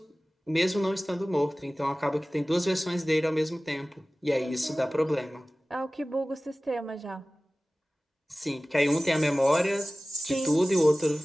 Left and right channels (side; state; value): both; normal; correlation 0.97